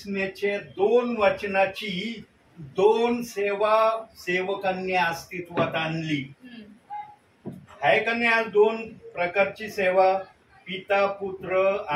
2 वचनाची 2 सेवा सेवकांनी अस्तित्वात आणली आहे का नाही. आज 2 प्रकारची सेवा, पिता पुत्र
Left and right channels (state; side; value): identical; both; correlation 1.00